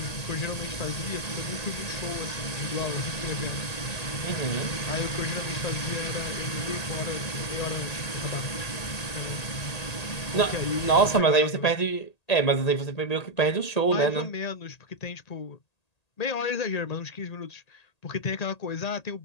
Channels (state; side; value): late; right; 1.8 ms